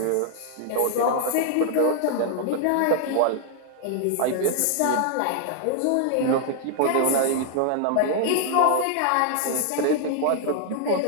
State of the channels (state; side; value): different; both; correlation 0.00